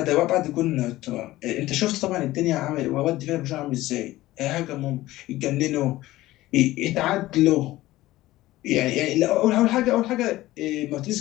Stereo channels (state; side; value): quieter; right; 16.8 dB